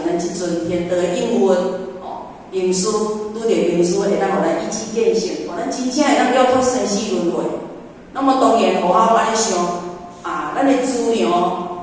咱即阵天道应运名师，拄着名师会当互咱一指见性，互咱真正会当了脱生死轮回。那么当然，互我安尼想。咱的资粮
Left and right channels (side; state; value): both; identical; correlation 1.00